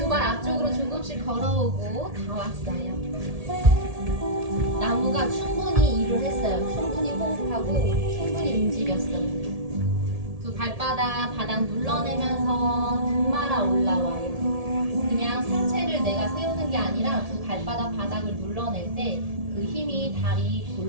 발 앞쪽으로 조금씩 걸어오고 다 왔어요. 나무가 충분히 일을 했어요. 충분히 호흡하고 충분히 움직였어요. 두 발바닥 바닥 눌러내면서 등 말아 올라와요. 그냥 상체를 내가 세우는 게 아니라 두 발바닥 바닥을 눌러낼 때 그 힘이 다리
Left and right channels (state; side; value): late; left; 1.7 ms